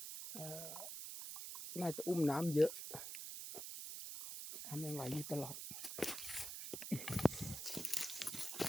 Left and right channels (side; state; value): right; noise; hiss, 6 dB below the sound